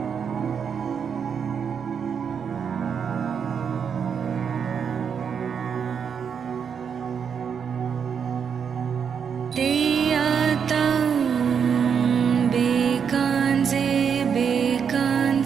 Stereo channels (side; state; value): left; quieter; 7.0 dB